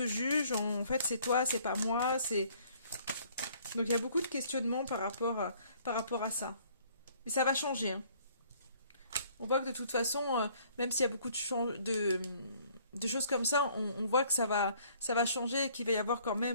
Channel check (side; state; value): both; inverted; correlation -0.59